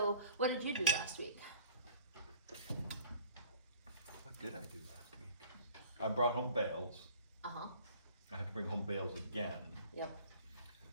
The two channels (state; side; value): inverted; both; correlation -0.51